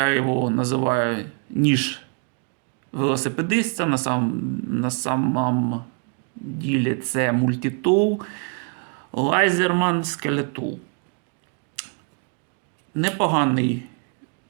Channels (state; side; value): quieter; left; 38.4 dB